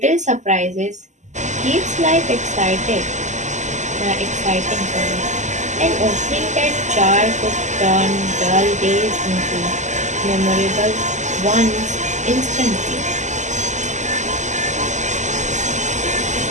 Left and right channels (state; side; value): late; left; 0.34 ms